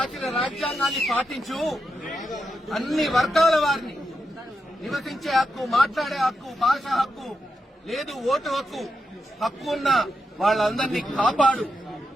రాజ్యాంగాన్ని పాటించు. అన్ని వర్గాల వారిని నివసించే హక్కు, మాట్లాడే హక్కు, భాష హక్కు, లేదు ఓటు హక్కు, హక్కు ఉన్న వాళ్ళందరినీ కాపాడు.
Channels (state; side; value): normal; both; correlation 0.86